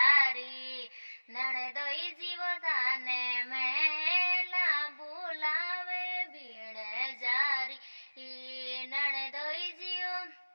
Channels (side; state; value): both; inverted; correlation -1.00